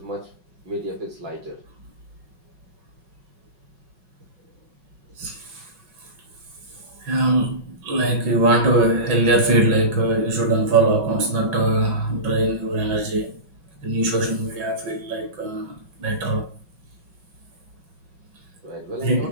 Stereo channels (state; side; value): late; left; 5.4 ms